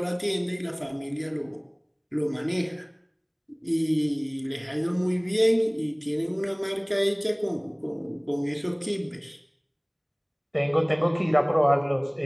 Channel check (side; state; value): both; identical; correlation 1.00